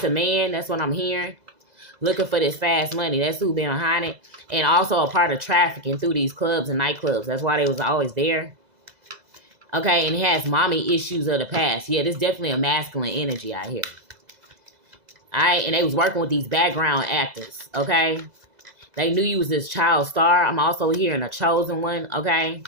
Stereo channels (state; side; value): late; left; 2.0 ms